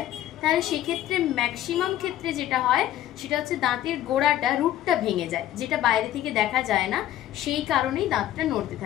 তাহলে সেক্ষেত্রে ম্যাক্সিমাম ক্ষেত্রে যেটা হয় সেটা হচ্ছে দাঁতের গোড়াটা, রুটটা ভেঙে যায়, যেটা বাইরে থেকে দেখা যায় না, সেই কারণেই দাঁতটা নড়তে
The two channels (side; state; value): right; quieter; 12.7 dB